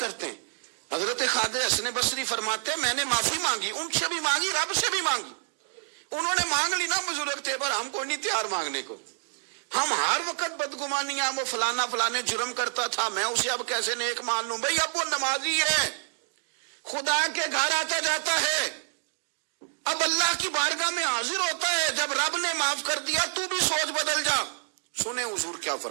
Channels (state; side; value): silent; left; digital silence